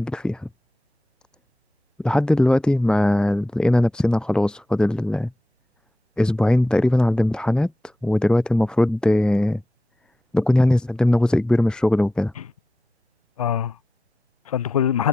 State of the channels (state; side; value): normal; both; correlation 0.93